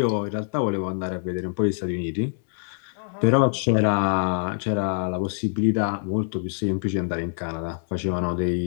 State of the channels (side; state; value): right; silent; 62 dB below the other